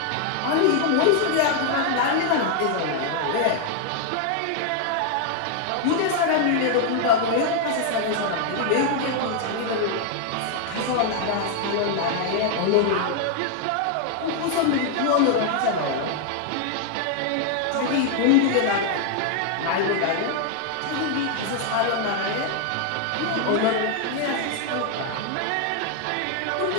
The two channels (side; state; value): both; different; correlation 0.00